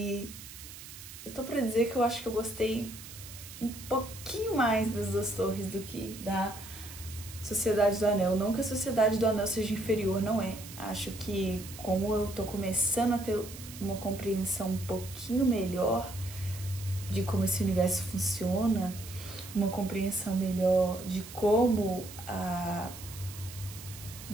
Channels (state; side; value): noise; right; hiss, 14 dB below the sound